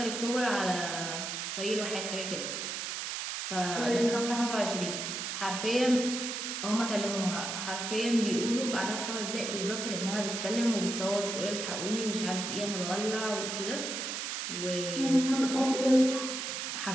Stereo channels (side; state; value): right; noise; hiss, 4 dB below the sound